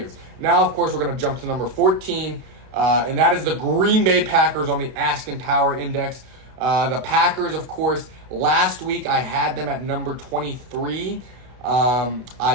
Now, of course, we're going to jump to number 14, and that is the Green Bay Packers on the Askin Power Index. The Packers, of course, last week I had them at number 23.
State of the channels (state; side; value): late; left; 32 ms